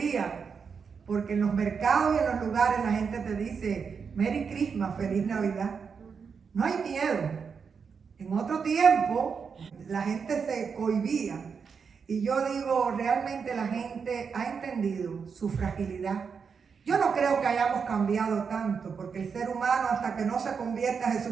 porque en los mercados y en los lugares la gente te dice, Merry Christmas, Feliz Navidad. No hay miedo. En otro tiempo la gente se cohibía. Y yo digo, realmente la gente ha entendido su fragilidad. Yo no creo que hayamos cambiado tanto, porque el ser humano hasta que no se convierta a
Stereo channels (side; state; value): left; quieter; 6.0 dB